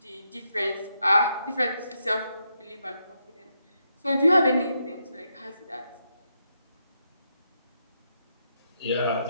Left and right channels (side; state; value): both; inverted; correlation -0.81